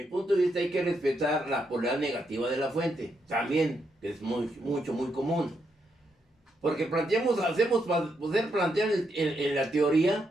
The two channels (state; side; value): normal; both; correlation 0.80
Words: punto de vista hay que respetar la polaridad negativa de la fuente. También, que es muy común. Porque hacemos para poder plantear en la